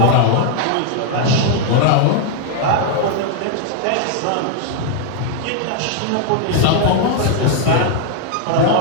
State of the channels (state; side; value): different; both; correlation 0.00